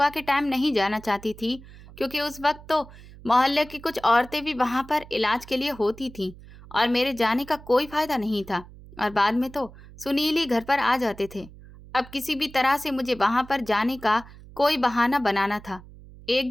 के टाइम नहीं जाना चाहती थी, क्योंकि उस वक्त तो मोहल्ले की कुछ औरतें भी वहां पर इलाज के लिए होती थीं और मेरे जाने का कोई फायदा नहीं था। और बाद में तो सुनील ही घर पर आ जाते थे। अब किसी भी तरह से मुझे वहां पर जाने का कोई बहाना बनाना था। एक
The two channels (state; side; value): noise; right; hum, 19 dB below the sound